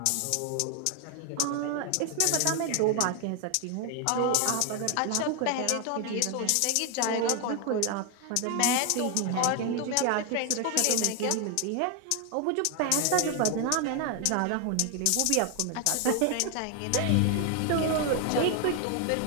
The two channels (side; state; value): both; different; correlation 0.01